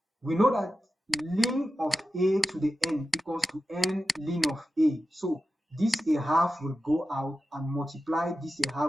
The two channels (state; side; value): normal; both; correlation 0.93